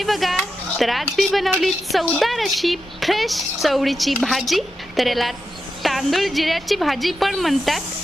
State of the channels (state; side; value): normal; both; correlation 0.88